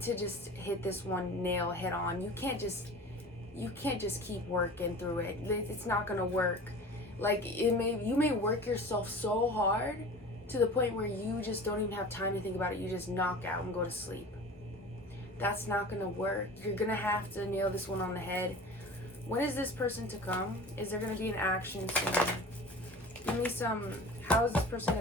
to just hit this one nail head on. You can't just keep working through it. It's not gonna work. Like you may work yourself so hard to the point where you just don't even have time to think about it. You just knock out and go to sleep. That's not gonna work. You're gonna have to nail this one on the head. When is this person to come? Is there gonna be an action soon? Give me some. How is this person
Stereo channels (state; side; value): normal; both; correlation 0.38